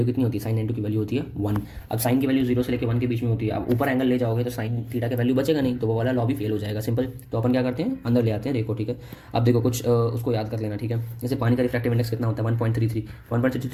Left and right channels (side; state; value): both; identical; correlation 1.00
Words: कितनी होती है, साइन 90 की वैल्यू होती है 1। अब साइन की वैल्यू 0 से लेकर 1 के बीच में होती है, अब ऊपर एंगल ले जाओगे तो साइन थीटा की वैल्यू बचेगा नहीं, तो वो वाला लॉ भी फेल हो जाएगा, सिंपल। तो अपन क्या करते हैं, अंदर ले आते हैं, देखो, ठीक है। अब देखो कुछ उसको याद कर लेना, ठीक है। जैसे पानी का रिफ्रैक्टिव इंडेक्स कितना होता है,